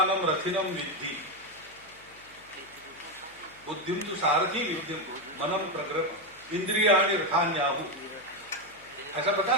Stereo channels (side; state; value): left; noise; hum, 28 dB below the sound